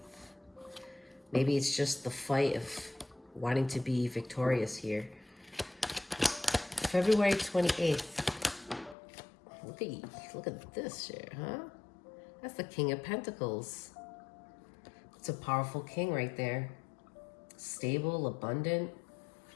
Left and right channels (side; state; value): right; drops out; at 9.0 s